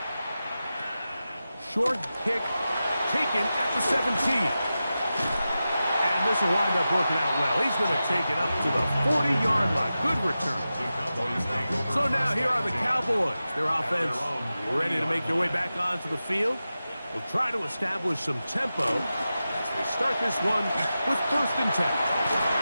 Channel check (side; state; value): both; inverted; correlation -0.93